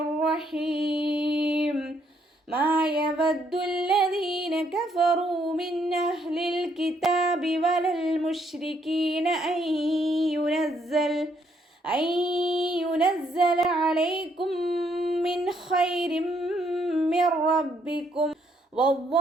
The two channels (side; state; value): both; normal; correlation 0.71